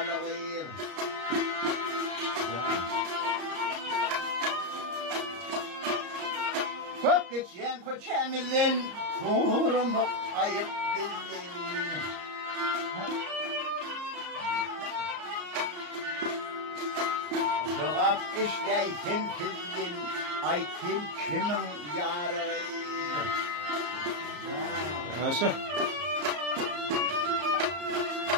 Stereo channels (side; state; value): left; late; 34 ms